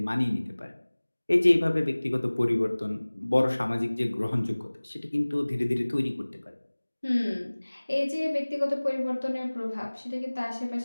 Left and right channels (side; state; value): both; inverted; correlation -1.00